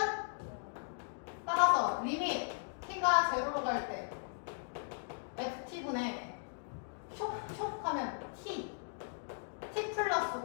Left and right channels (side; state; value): right; silent; digital silence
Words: 따라서 리밋 t가 제로로 갈 때 ft분의 촉 하면 t 플러스